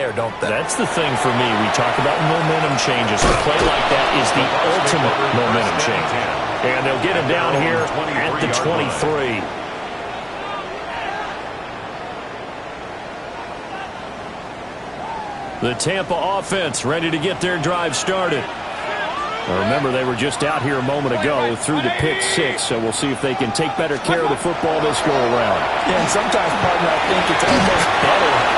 don't they? That's the thing for me. We talk about momentum changes. A play like that is the ultimate momentum change. And they'll get it down here at the 23. The Tampa offense ready to get their drive started. Now remember, they were just out here a moment ago through the pick 6, so we'll see if they can take better care of the football this go around. Yeah, and sometimes, partner, I think it's almost better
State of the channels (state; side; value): identical; both; correlation 1.00